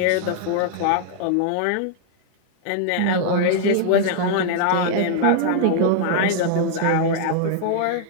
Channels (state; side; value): different; both; correlation -0.01